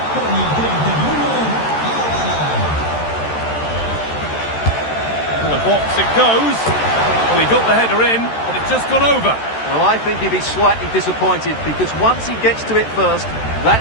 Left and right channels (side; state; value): right; late; 13 ms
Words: To the box it goes. Well, he got the header in, but it's just gone over. Well, I think he'd be slightly disappointed because once he gets to it first,